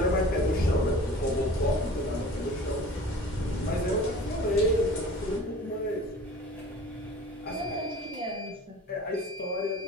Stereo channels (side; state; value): both; normal; correlation 0.43